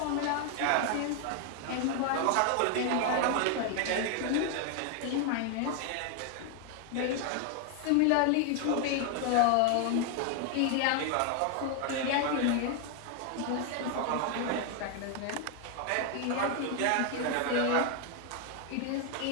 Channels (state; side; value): different; both; correlation 0.01